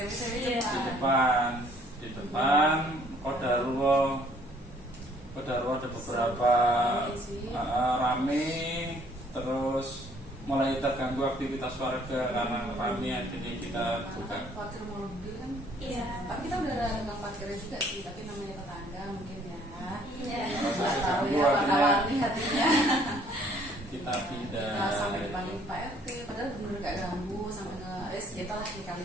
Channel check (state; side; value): normal; both; correlation 0.61